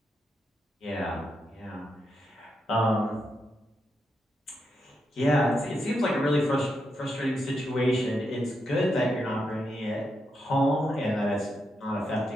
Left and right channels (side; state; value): both; normal; correlation 0.83